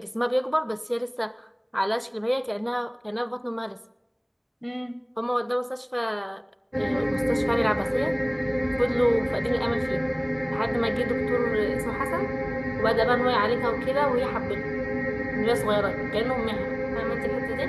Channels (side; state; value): both; identical; correlation 1.00